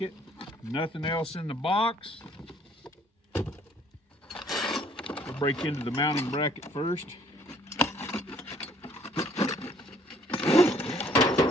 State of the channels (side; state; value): both; normal; correlation 0.60